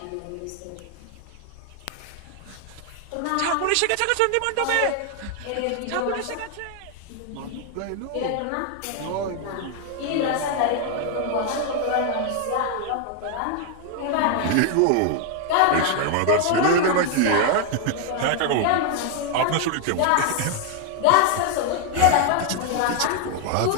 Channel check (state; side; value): different; both; correlation 0.00